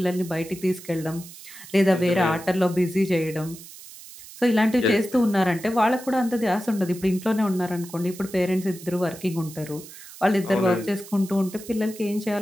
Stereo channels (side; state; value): right; noise; hiss, 17 dB below the sound